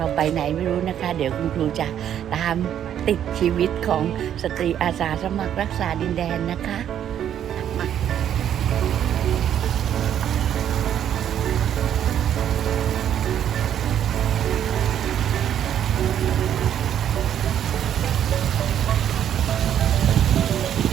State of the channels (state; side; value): quieter; left; 10.0 dB